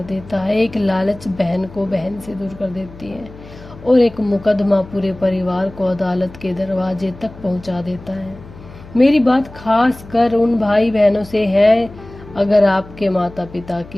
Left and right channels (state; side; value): noise; left; hum, 18 dB below the sound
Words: देता है, एक लालच बहन को बहन से दूर कर देती है, और एक मुकदमा पूरे परिवार को अदालत के दरवाजे तक पहुंचा देता है। मेरी बात खास कर उन भाई बहनों से है, अगर आपके माता पिता